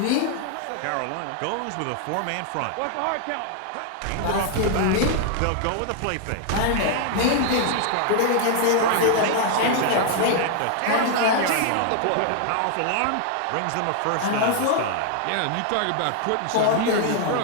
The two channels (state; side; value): different; both; correlation 0.00